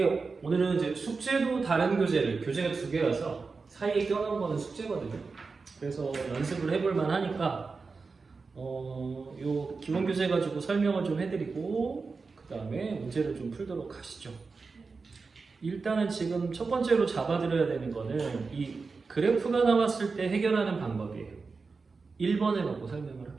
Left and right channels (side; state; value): left; quieter; 4.4 dB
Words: 오늘은 이제 숙제도 다른 교재가 두 개라서 사이에 껴놓은 거는 숙제거든요. 그래서 연습을 해볼 만하니까 요 기본 교재 가지고 설명을 좀 해드리고 그 다음에 문제를 좀 풀도록 하시죠. 일단은 지금 첫 번째로 잡아드려야 되는 거는 이 그래프가 나왔을 때 해결하는 방법이에요. 1번을 갖고 설명을